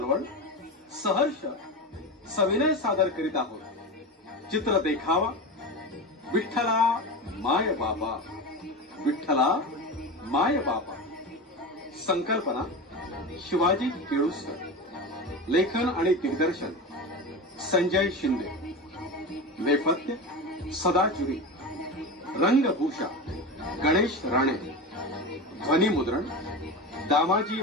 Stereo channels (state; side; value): normal; both; correlation 0.24